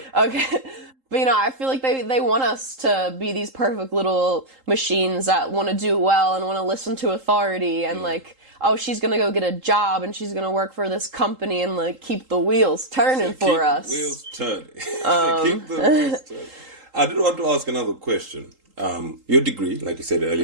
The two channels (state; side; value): late; left; 3.8 ms